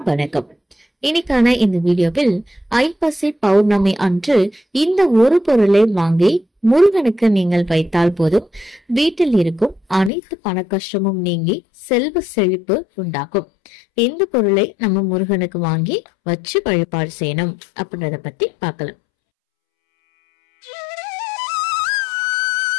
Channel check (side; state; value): right; drops out; at 10.1 s